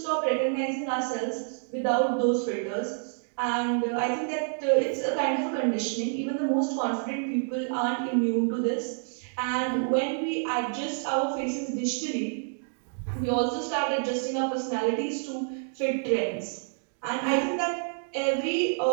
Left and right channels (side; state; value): left; silent; digital silence